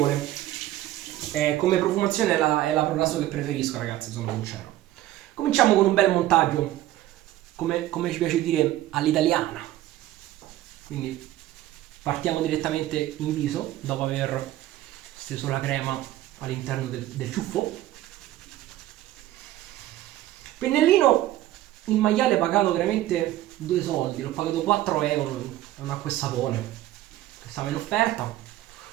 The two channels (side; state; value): left; quieter; 14.5 dB